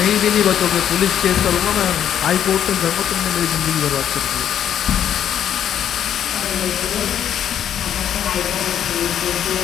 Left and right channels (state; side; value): quieter; right; 9.7 dB